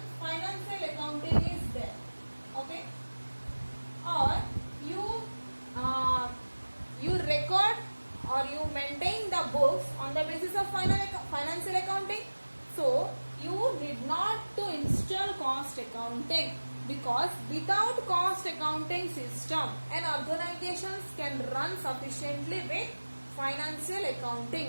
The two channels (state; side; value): inverted; both; correlation -1.00